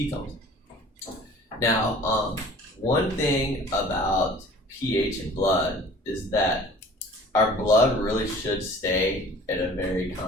Now, one thing about pH in blood is that our blood really should stay at a very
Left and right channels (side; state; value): both; normal; correlation 0.47